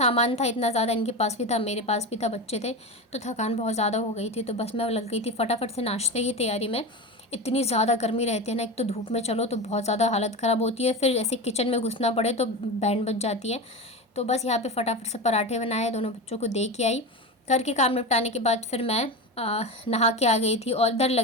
था इतना ज़्यादा, इनके पास भी था मेरे पास भी था, बच्चे थे, तो थकान बहुत ज़्यादा हो गई थी। तो बस मैं लग गई थी फटाफट से नाश्ते की तैयारी में। इतनी ज़्यादा गर्मी रहती है ना, एक तो धूप में चलो तो बहुत ज़्यादा हालत ख़राब होती है, फिर ऐसे किचन में घुसना पड़े तो बैंड बज जाती है। तो बस यहाँ पे फटाफट से पराठे बनाए, दोनों बच्चों को दे के आई। घर के काम निपटाने के बाद फिर मैं नहा के आ गई थी और इधर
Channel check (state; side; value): normal; both; correlation 0.23